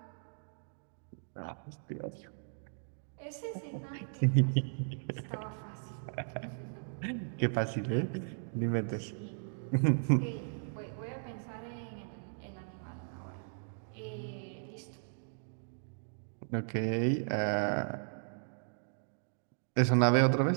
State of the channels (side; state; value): left; silent; digital silence